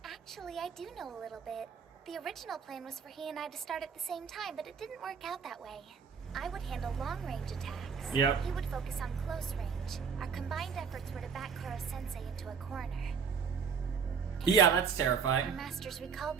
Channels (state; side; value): quieter; left; 6.2 dB